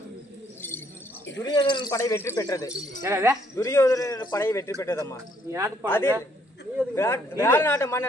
துரியோதனன் படை வெற்றி பெற்றது. என்னது? துரியோதனன் படை வெற்றி பெற்றதம்மா. அதில் விராட நாட்டு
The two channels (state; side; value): normal; both; correlation 0.68